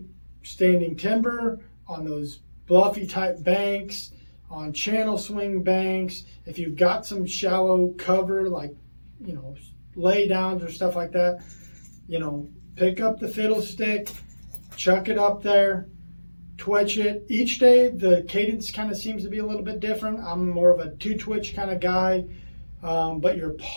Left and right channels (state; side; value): inverted; both; correlation -1.00